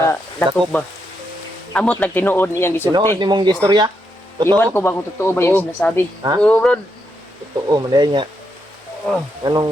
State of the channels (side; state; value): both; normal; correlation 0.81